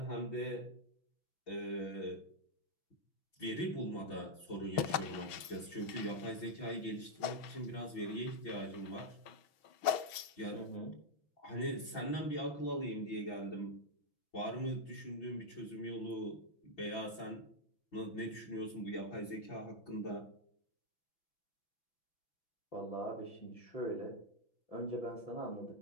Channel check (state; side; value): late; right; 6.3 ms